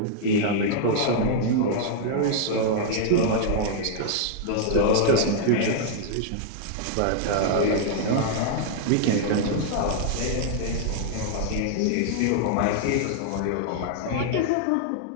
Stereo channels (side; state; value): both; different; correlation -0.01